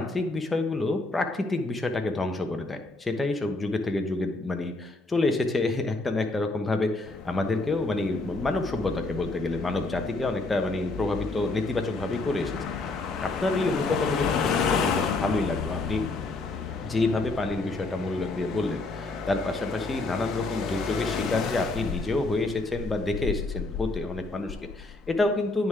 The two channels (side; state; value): right; quieter; 3.0 dB